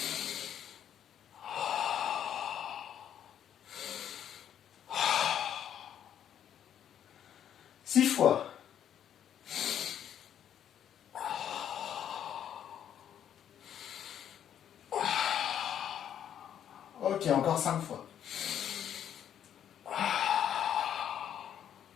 6 fois. Ok, encore 5 fois.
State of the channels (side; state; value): right; quieter; 9.7 dB